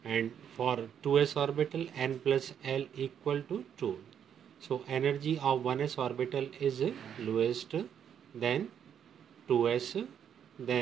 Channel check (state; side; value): quieter; left; 8.7 dB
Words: and for 2s orbital n plus L equal to 2. So energy of 1s orbital is lowest, then 2s,